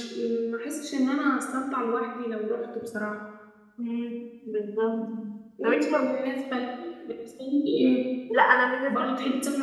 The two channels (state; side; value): identical; both; correlation 1.00